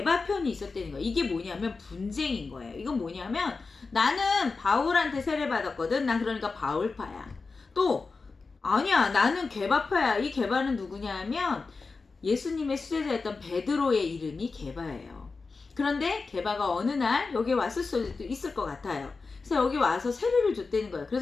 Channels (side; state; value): right; quieter; 4.2 dB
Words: 편이 있었다는 거예요. 이게 뭐냐면 분쟁인 거예요. 이건 뭐냐면 나는 바울한테 세례받았거든. 난 그러니까 바울파야. 또 아니야, 나는 게바파야. 이 게바는 누구냐 하면 예수님의 수제자였던 베드로의 이름이 게바예요. 그런데 게바가 어느 날 여기 왔을 수도 있을 것 같아요. 그래서 여기 와서 세례를 줬다는 거예요.